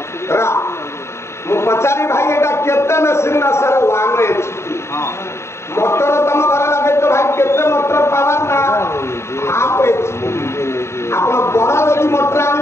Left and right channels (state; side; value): late; right; 0.13 ms